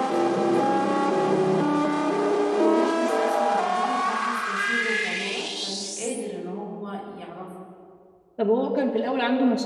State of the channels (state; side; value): identical; both; correlation 1.00